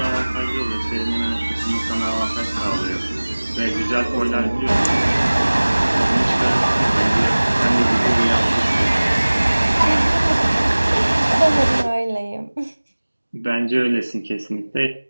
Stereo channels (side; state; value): both; inverted; correlation -1.00